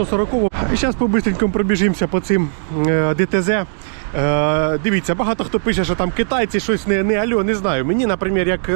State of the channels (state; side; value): silent; left; digital silence